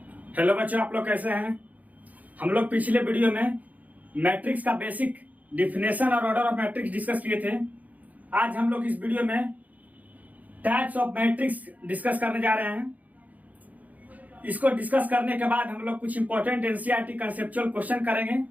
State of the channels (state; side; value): late; left; 0.077 ms